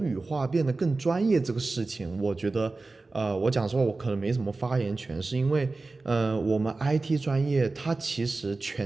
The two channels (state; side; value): quieter; left; 3.5 dB